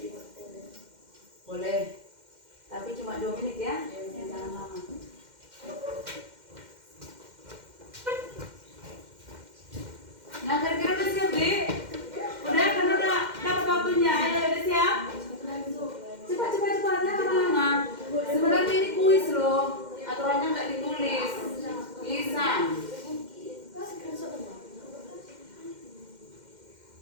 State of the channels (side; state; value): left; late; 2.1 ms